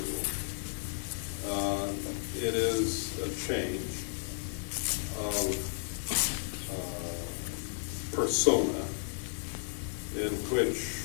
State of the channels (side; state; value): right; silent; 56 dB below the other